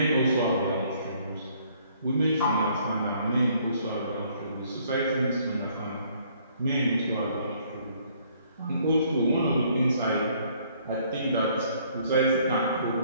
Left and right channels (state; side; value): inverted; both; correlation -0.63